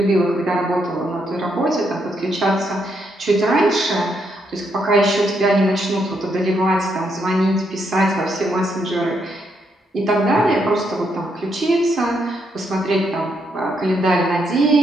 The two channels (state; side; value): normal; both; correlation 0.77